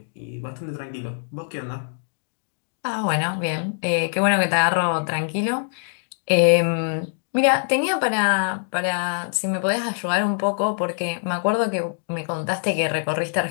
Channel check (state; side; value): silent; right; digital silence